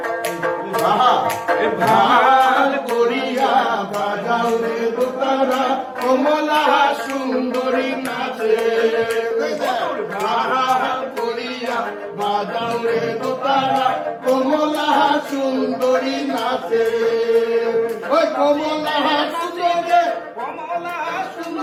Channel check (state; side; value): identical; both; correlation 1.00